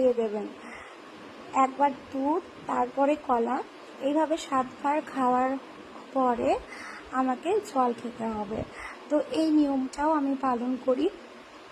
দেবেন। একবার দুধ, তারপরে কলা, এইভাবে 7 বার খাওয়ার পরে আমাকে জল খেতে হবে। তো এই নিয়মটাও আমি পালন করি।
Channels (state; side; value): identical; both; correlation 1.00